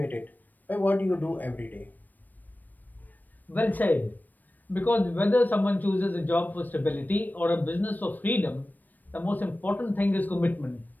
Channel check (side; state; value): right; late; 0.087 ms